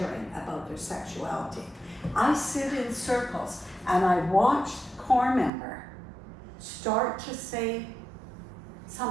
about their sexuality. I sit in circles and I watch the core member start to say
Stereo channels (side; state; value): left; drops out; at 5.5 s